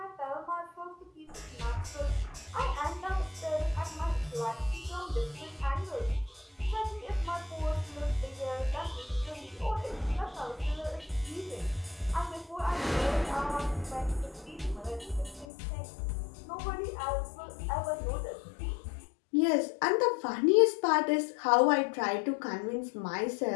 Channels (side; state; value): right; drops out; at 15.5 s